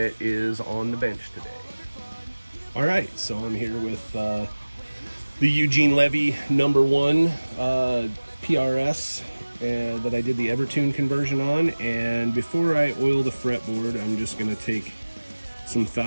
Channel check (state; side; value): inverted; both; correlation -1.00